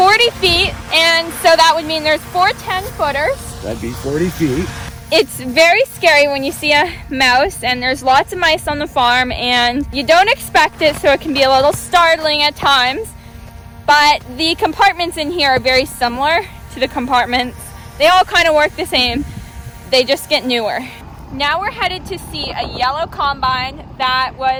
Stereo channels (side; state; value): both; identical; correlation 1.00